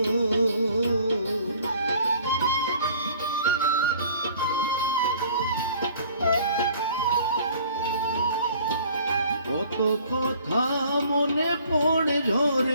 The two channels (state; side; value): inverted; both; correlation -0.53